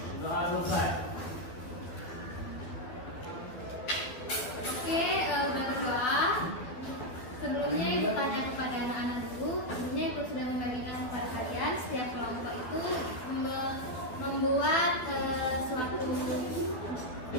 Doa selesai. Oke, udah berdoa. Sebelumnya Ibu tanya kepada anak-anak dulu. Sebelumnya Ibu sudah membagikan kepada kalian setiap kelompok itu membuat suatu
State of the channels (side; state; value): right; late; 12 ms